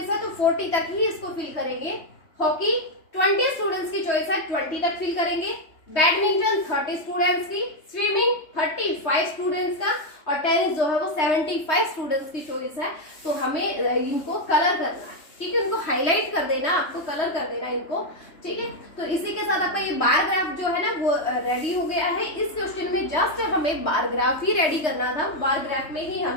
है, तो 40 तक ही इसको फिल करेंगे। हॉकी 20 स्टूडेंट्स की चॉइस है, 20 तक फिल करेंगे। बैडमिंटन 30 स्टूडेंट्स की, स्विमिंग 35 स्टूडेंट्स का, और टेनिस जो है वो 75 स्टूडेंट्स की चॉइस है। तो हमें इनको कलर करना है, ठीक है, इनको हाईलाइट कर देना, आपको कलर कर देना इनको, ठीक है। तो इसी के साथ आपका ये बार ग्राफ जो है ना वो रेडी हो गया है। इस क्वेश्चन में जस्ट हमें बार ग्राफ ही रेडी करना था, बार ग्राफ में ही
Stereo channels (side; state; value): right; late; 3.2 ms